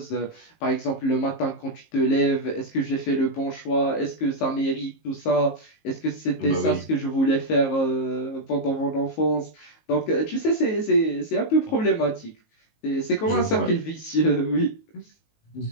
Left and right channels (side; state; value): right; late; 19 ms